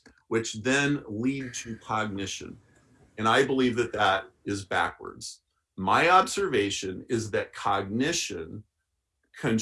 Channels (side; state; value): both; identical; correlation 1.00